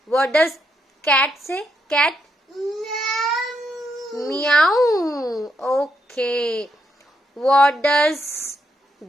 What does cat say? Cat? Meow. Okay. What does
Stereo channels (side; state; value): both; normal; correlation 0.79